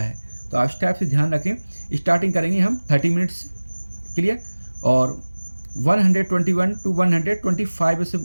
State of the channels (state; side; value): inverted; both; correlation -1.00